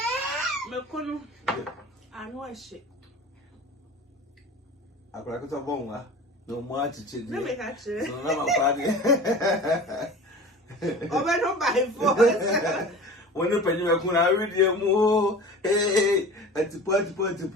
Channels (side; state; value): both; normal; correlation 0.38